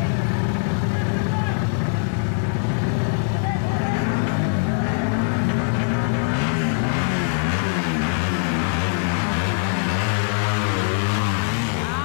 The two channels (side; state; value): right; silent; digital silence